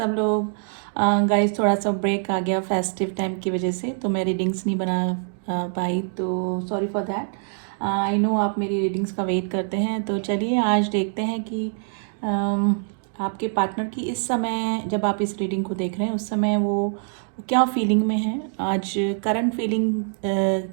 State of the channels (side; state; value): left; silent; 63 dB below the other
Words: लोग। गाइस थोड़ा सा ब्रेक आ गया फेस्टिव टाइम की वजह से, तो मैं रीडिंग्स नहीं बना पाई, तो sorry for that. I know आप मेरी रीडिंग्स का वेट करते हैं, तो चलिए आज देखते हैं कि आपके पार्टनर की इस समय, जब आप इस रीडिंग को देख रहे हैं उस समय वो क्या फीलिंग में है। आज करंट फीलिंग